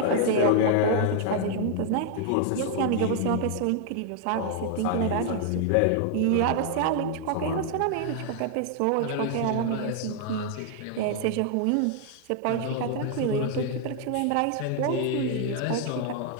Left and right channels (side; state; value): both; different; correlation 0.00